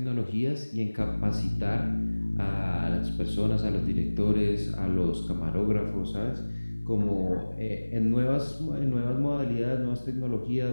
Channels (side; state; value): both; inverted; correlation -1.00